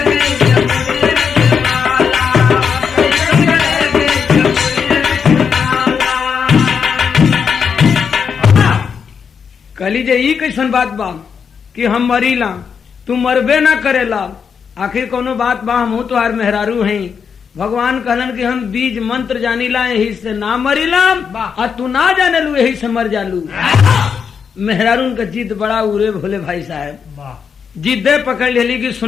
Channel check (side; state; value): right; quieter; 6.6 dB